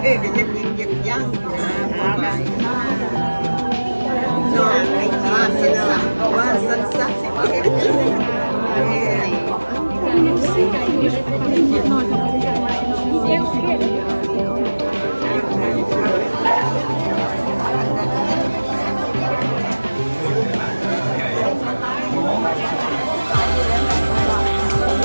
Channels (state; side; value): inverted; both; correlation -1.00